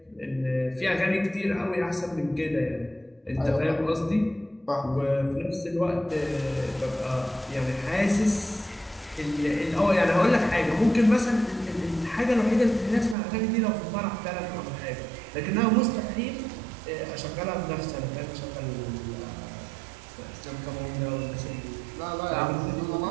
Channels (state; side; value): drops out; left; at 13.2 s